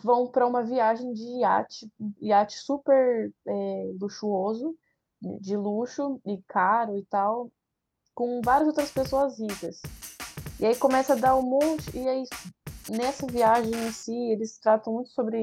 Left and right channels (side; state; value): both; identical; correlation 1.00